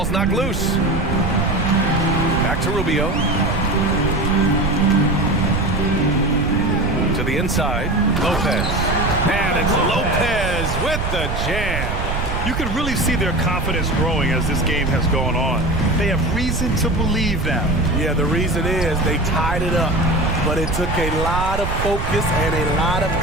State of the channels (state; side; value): noise; right; rumble, 2 dB below the sound